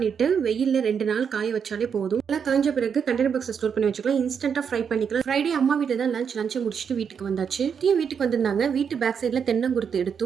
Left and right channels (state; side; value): quieter; left; 7.0 dB